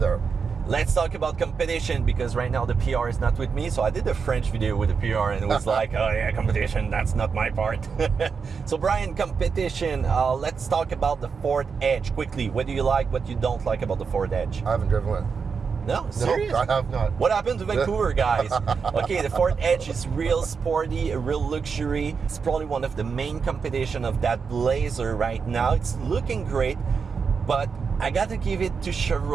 Let's talk about competition, because right now the PR is not with me. So I did a French video with the PR and it was like, oh yeah, competition, that's not my part. So Brian, competition, let's talk about the Ford Edge quickly. What do you like, what you don't like about the Ford Edge? I haven't driven one. No, serious? No, I have not. What happened to Vancouver, guys? Okay, the Ford Edge is real sporty, a real luxury. It's probably one of the main competition of that Blazer right now. It's looking great, but I gotta give it to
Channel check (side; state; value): left; quieter; 5.6 dB